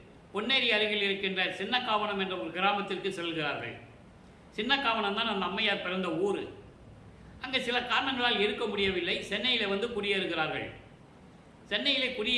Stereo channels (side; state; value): both; identical; correlation 1.00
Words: பொன்னேரி அருகில் இருக்கின்ற சின்னக்காவனம் என்ற ஒரு கிராமத்திற்கு செல்கிறார்கள். சின்னக்காவனம் தான் அந்த அம்மையார் பிறந்த ஊர். அங்கே சில காரணங்களால் இருக்க முடியவில்லை. சென்னையில் வந்து குடியேறுகிறார்கள். சென்னையிலே